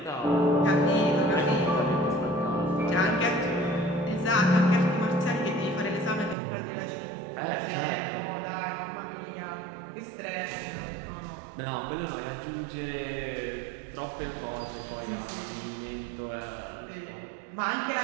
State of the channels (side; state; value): left; drops out; at 6.4 s